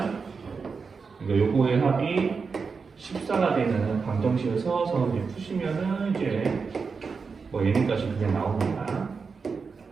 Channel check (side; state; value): left; quieter; 5.1 dB